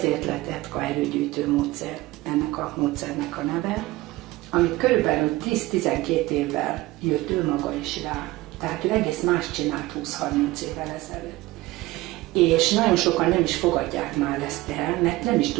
lett ETKA erőgyűjtő módszer, ennek a módszernek a neve, amit körülbelül 10-12 évvel jött ő maga is rá. Tehát ő egész más csinált 20-30 évvel ezelőtt. És nagyon sokan nem is fogadják már ezt el, mert nem is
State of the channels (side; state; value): left; quieter; 18.7 dB